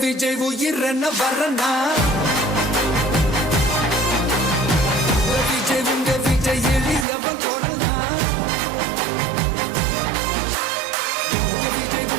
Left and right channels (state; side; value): drops out; left; at 7.1 s